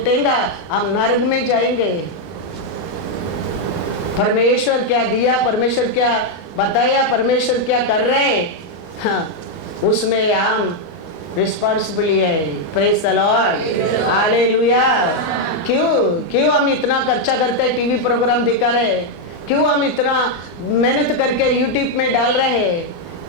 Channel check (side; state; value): right; late; 24 ms